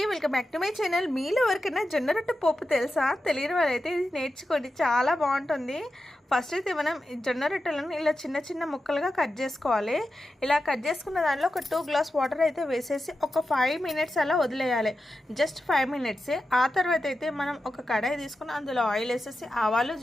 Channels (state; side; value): normal; both; correlation 0.91